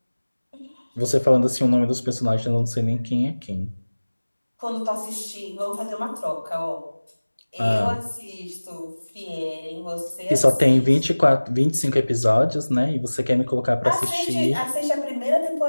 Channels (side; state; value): both; inverted; correlation -1.00